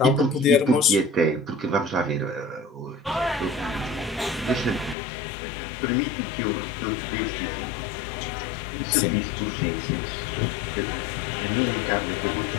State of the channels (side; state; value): right; drops out; at 5.0 s